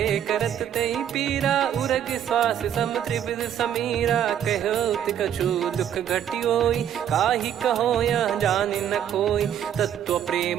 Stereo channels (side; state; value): left; quieter; 9.8 dB